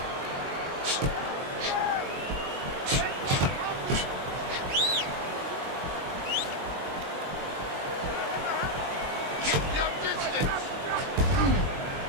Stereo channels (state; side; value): late; left; 22 ms